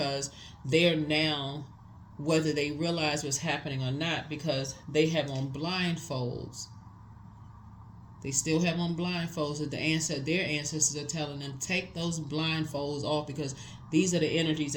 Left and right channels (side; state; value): both; identical; correlation 1.00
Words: they're now, whether they realize what's happening or not, because they have on blindfolds. They still have on blindfolds that their ancestors are telling them, take those blindfolds off, because these are the energies